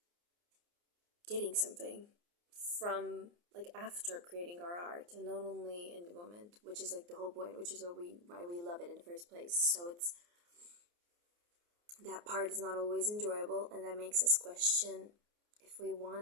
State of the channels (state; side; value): late; left; 29 ms